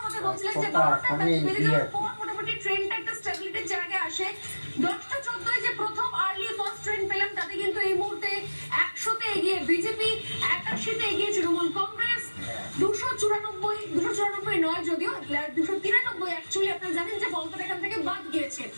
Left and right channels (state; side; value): inverted; both; correlation -1.00